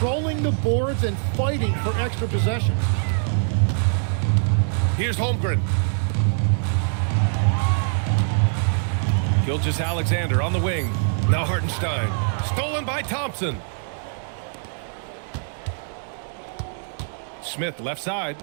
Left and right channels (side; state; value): left; silent; 61 dB below the other